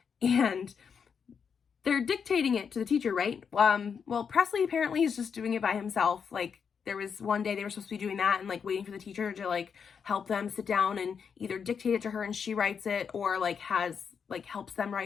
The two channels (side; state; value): right; quieter; 6.6 dB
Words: they're dictating it to the teacher, right? Well, Presley apparently is just doing it by himself. Like there was one day they were supposed to be doing that and like waiting for the teacher to like help them sit down and either dictate it to her and she writes it, or like helps them